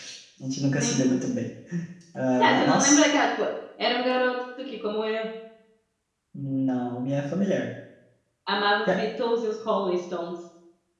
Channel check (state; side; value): identical; both; correlation 1.00